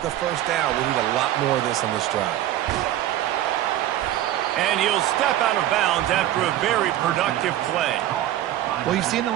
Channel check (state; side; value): quieter; left; 13.1 dB